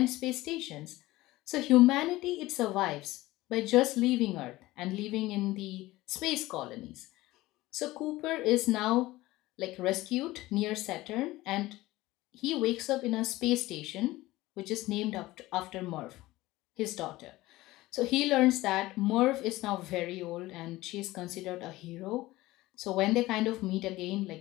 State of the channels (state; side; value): quieter; right; 18.2 dB